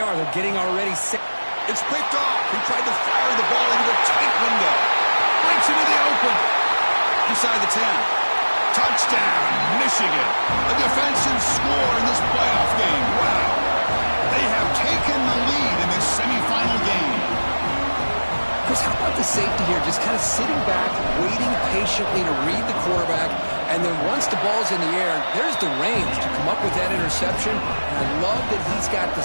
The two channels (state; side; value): inverted; both; correlation -1.00